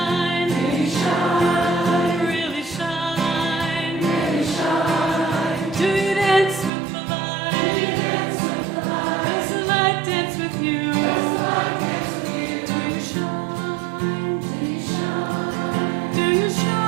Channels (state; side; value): drops out; left; at 6.7 s